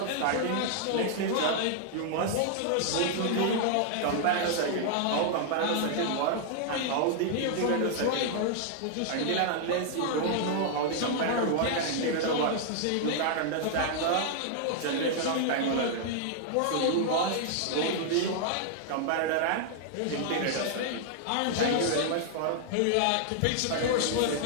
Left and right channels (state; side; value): different; both; correlation -0.01